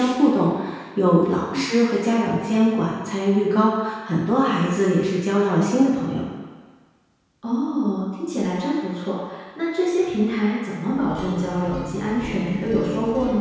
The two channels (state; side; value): identical; both; correlation 1.00